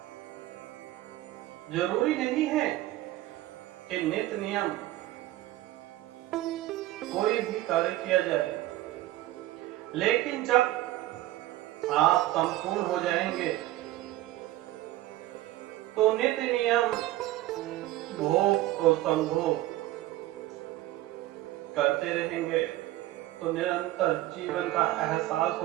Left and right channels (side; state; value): left; quieter; 16.1 dB